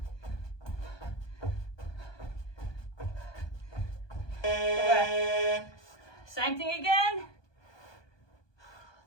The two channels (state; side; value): late; right; 1.2 ms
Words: Okay. Same thing again.